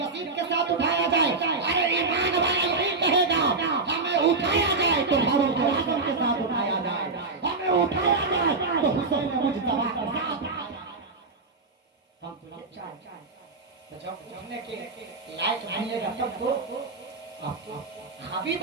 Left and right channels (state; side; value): quieter; left; 3.8 dB